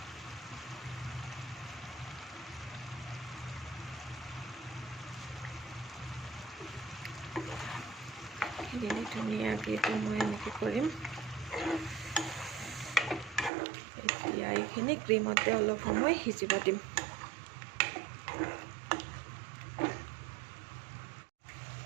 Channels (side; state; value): left; drops out; at 13.5 s